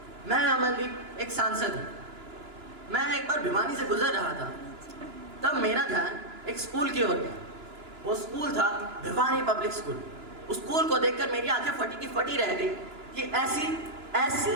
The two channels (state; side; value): late; left; 2.9 ms